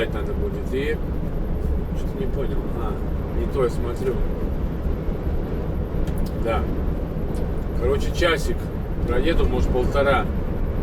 надо будет. И что-то не понял. Не то я смотрю. Да. Короче, часик проеду, может, 1,5.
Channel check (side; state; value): both; identical; correlation 1.00